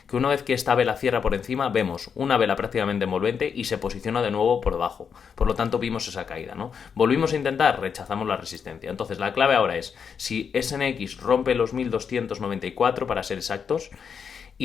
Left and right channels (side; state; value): right; quieter; 6.7 dB